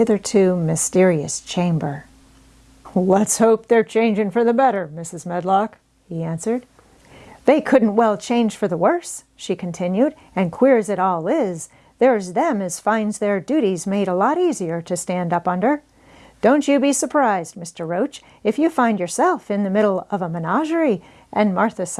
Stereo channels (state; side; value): identical; both; correlation 1.00